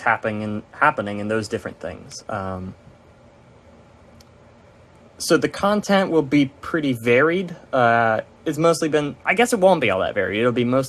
in those different things. So the content will be pretty varied. It's mostly been, I guess it won't be all that varied. It'll be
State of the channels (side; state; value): both; identical; correlation 1.00